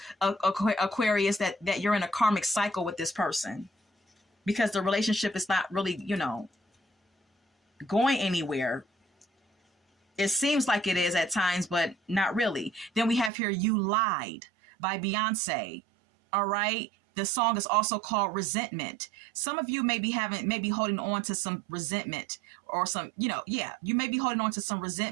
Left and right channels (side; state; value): left; drops out; at 13.3 s